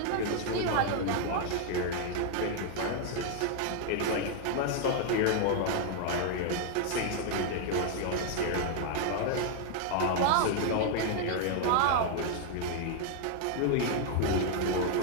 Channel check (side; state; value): both; different; correlation 0.00